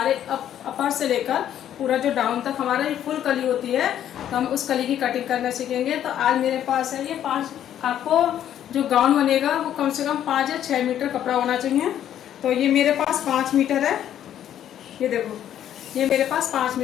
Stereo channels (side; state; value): right; quieter; 10.7 dB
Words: अपर से लेकर पूरा जो डाउन तक हमारा ये फुल कली होती है, तो हम उस कली की कटिंग करना सीखेंगे। तो आज मेरे पास है ये 5, आपको जो गाउन बनेगा वो कम से कम 5 या 6 मीटर कपड़ा होना चाहिए। तो ये मेरे पास 5 मीटर है, ये देखो, ये मेरे पास 5